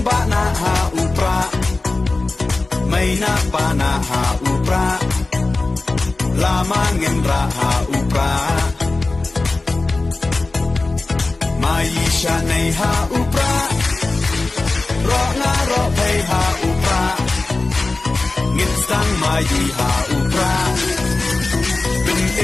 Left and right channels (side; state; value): right; quieter; 3.3 dB